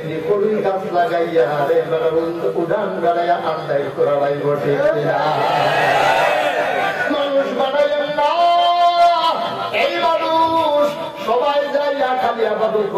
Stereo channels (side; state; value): both; identical; correlation 1.00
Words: করুই গাছ লাগাইয়া উড়ান গাড়াইয়া আন্দাই করা লাই বটে। মানুষ বানাইলেন না, এই মানুষ সবাই যাইয়া খালি আবাদত